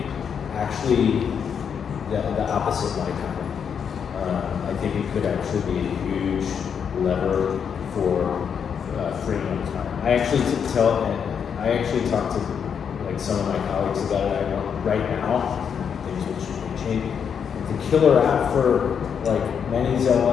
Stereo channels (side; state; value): right; quieter; 7.3 dB